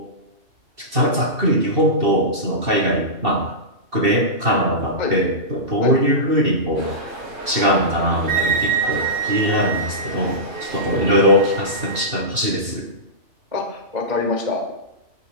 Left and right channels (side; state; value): left; late; 2.7 ms